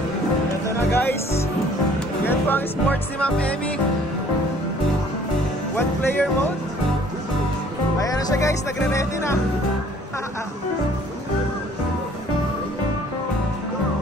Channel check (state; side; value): normal; both; correlation 0.56